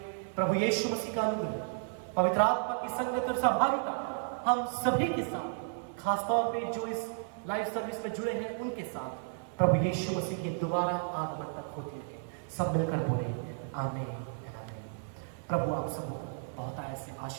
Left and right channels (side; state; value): left; silent; 56 dB below the other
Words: प्रभु यीशु मसीह का अनुग्रह, पवित्र आत्मा की संगत और सहभागिता हम सभी के साथ, खासतौर पे जो इस लाइव सर्विस में जुड़े हैं उनके साथ प्रभु यीशु मसीह के दोबारा आगमन तक होती रहे। सब मिलकर बोले आमीन। प्रभु आप सबको बहुत ऐसे